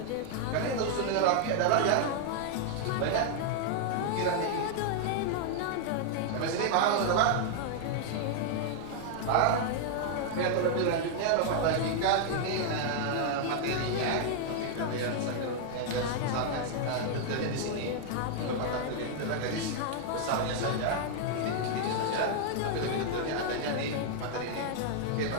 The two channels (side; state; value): both; different; correlation 0.00